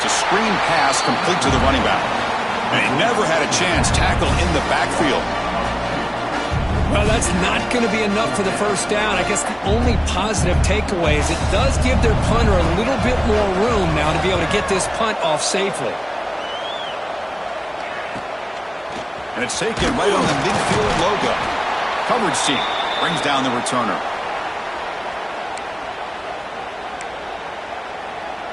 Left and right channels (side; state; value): both; identical; correlation 1.00